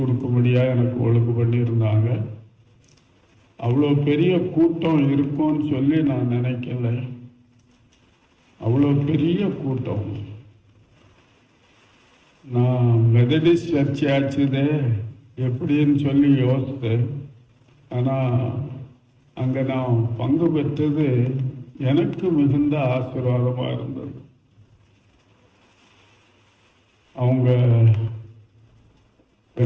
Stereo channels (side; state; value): both; identical; correlation 1.00